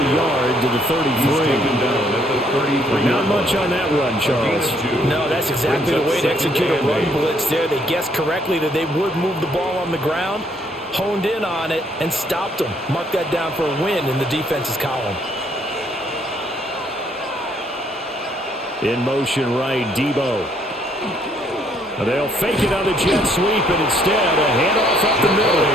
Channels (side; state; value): both; normal; correlation 0.67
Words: yard to the 33. Not much on that run, Charles. No, that's exactly the way to execute a run blitz there. They guessed correctly that they would move the ball on the ground, honed in on it, and stopped them. Mark that down for a win in the defense's column. In motion right, Debo. They'll fake it on the jet sweep, and instead a handoff up the middle.